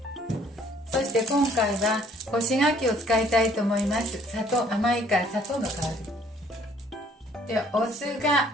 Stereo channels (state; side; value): normal; both; correlation 0.60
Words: そして今回は干し柿を使いたいと思います。砂糖、甘いから砂糖の代わりで、お酢が